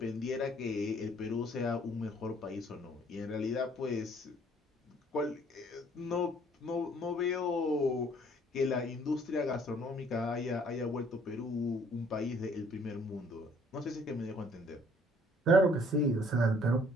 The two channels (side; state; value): both; normal; correlation 0.60